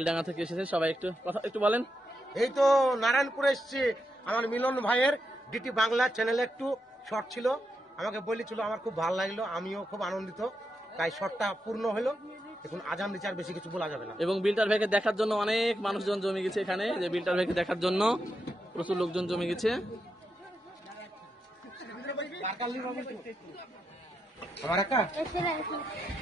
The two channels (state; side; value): normal; both; correlation 0.84